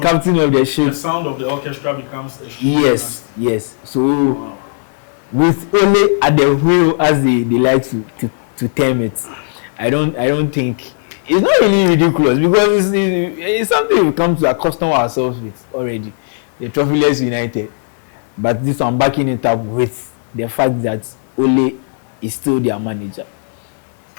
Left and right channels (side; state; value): right; silent; digital silence